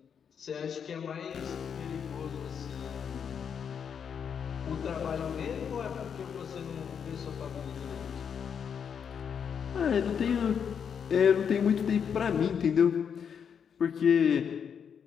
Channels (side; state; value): right; quieter; 7.3 dB